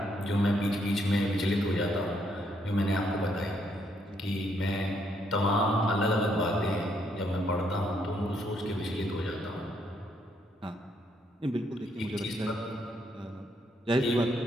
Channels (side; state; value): both; normal; correlation 0.73